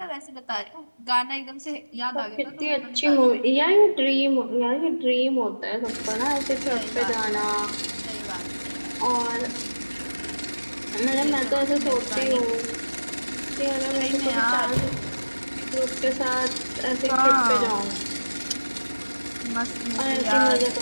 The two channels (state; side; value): inverted; both; correlation -1.00